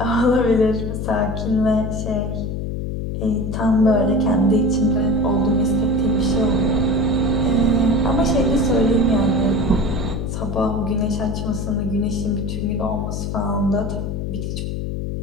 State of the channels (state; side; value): noise; left; hum, 3 dB below the sound